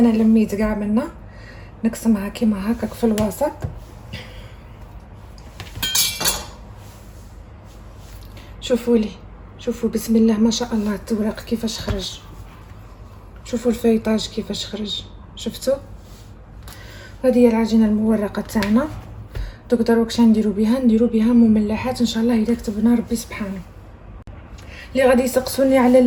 لميت كاع منا، نقسمها كيما هكاك في الوسط. شوفوا لي، شوفوا بسم الله ما شاء الله التورق كيفاش خرج. شوفوا الفيطاج كيفاش خرج، شفتوا. هذه هي العجينه المورقه تاعنا. دوك دروك شنو نديرو بها، نديرو بها مملحات ان شاء الله اذا كتبنا ربي سبحانه. اللي غادي يسقسوني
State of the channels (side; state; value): both; identical; correlation 1.00